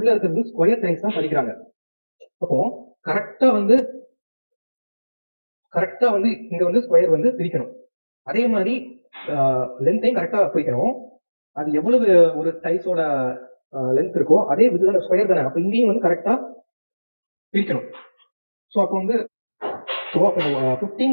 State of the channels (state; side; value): inverted; both; correlation -1.00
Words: இருக்கிறது ஸ்கொயர் டைல்ஸ் தான் பதிக்கிறாங்க. அப்போ கரெக்டாக வந்து இங்க வந்து ஸ்கொயர் வந்து பிரிக்கணும். அதே மாதிரி லென்த்தையும் கரெக்டாக பிரிக்கணும். அது எவ்வளவு ஒரு டைல்ஸோட லென்த் இருக்கோ அதே இதுதான் ஸ்கொயர் தானே, அப்போ இங்கேயும் வந்து கரெக்டாக பிரிக்கணும். ஸோ அப்போ வந்து